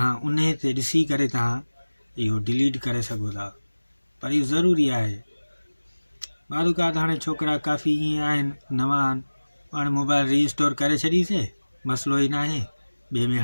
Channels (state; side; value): inverted; both; correlation -1.00